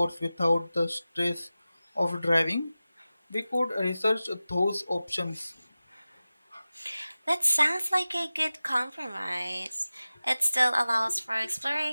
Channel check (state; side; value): inverted; both; correlation -0.96